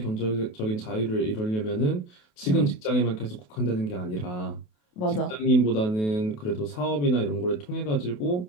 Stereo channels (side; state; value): right; late; 28 ms